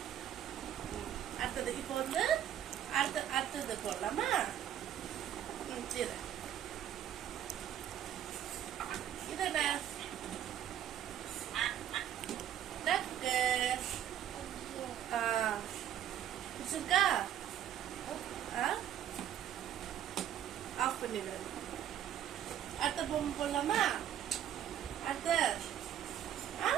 அடுத்தது இப்போ வந்து அடுத்தது போடலாமா? சரி, இது என்ன? டக்கு. பிடிச்சிருக்கா? ஆஃப் பண்ணிடு. அடுத்த பொம்மை போடலாமா? அடுத்த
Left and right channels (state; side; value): quieter; left; 10.7 dB